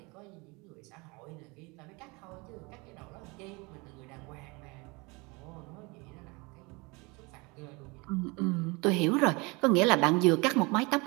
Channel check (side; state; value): left; quieter; 26.9 dB